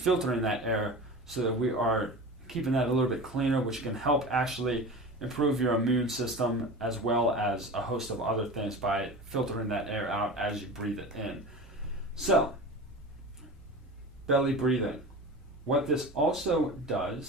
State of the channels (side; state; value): both; normal; correlation 0.32